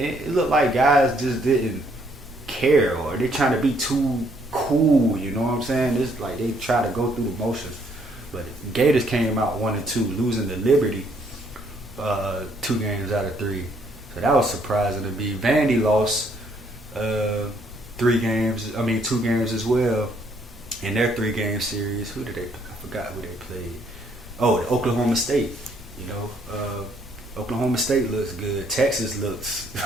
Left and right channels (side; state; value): both; normal; correlation 0.68